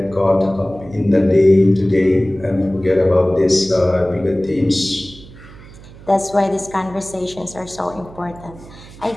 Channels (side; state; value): right; noise; hum, 19 dB below the sound